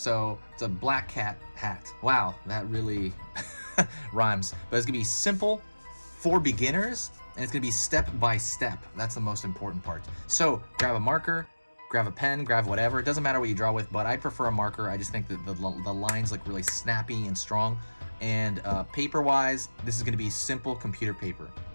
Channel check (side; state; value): both; inverted; correlation -1.00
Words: it's a black cat hat. Wow, that really rhymes. But it's gonna be simple for beginners, and it's gonna be step by step. That's the most important part. So grab a marker, grab a pen, grab whatever. It doesn't matter what you draw with, but I prefer a marker. I just think that the lines look really snappy and strong. And paper-wise, this is gonna be simple computer paper.